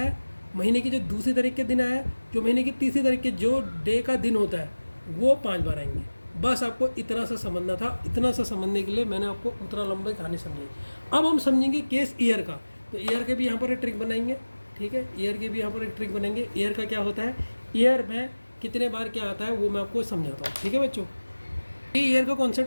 है, महीने की जो दूसरी तारीख के दिन आया है, जो महीने की तीसरी तारीख के जो डे का दिन होता है, वो 5 बार आएंगे। बस आपको इतना सा समझना था। इतना सा समझने के लिए मैंने आपको उतना लंबी कहानी समझाई। अब हम समझेंगे केस ईयर का। तो ईयर के भी यहाँ पर एक ट्रिक बनाएंगे। ठीक है, ईयर के भी यहाँ पर एक ट्रिक बनाएंगे। ईयर का क्या होता है, ईयर में कितने बार क्या आता है वो मैं आपको समझाता हूँ। ठीक है बच्चों, ये ईयर का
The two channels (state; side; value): inverted; both; correlation -1.00